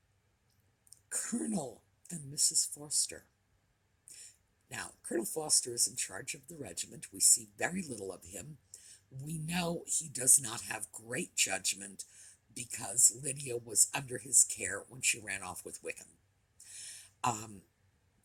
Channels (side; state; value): both; identical; correlation 1.00